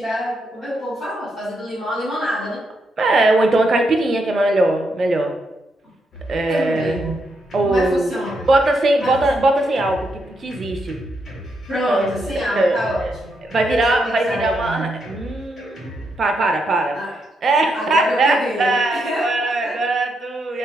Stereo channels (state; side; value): normal; both; correlation 0.80